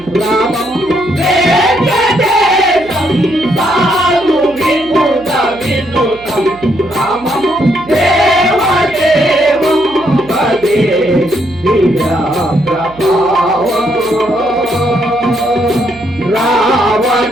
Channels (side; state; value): right; noise; hum, 22 dB below the sound